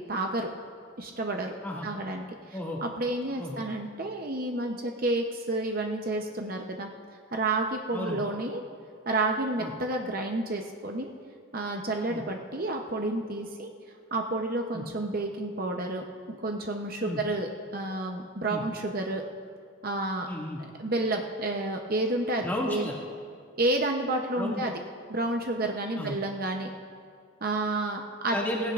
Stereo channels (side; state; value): both; normal; correlation 0.26